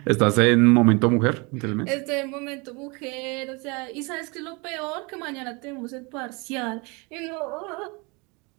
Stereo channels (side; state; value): left; quieter; 29.0 dB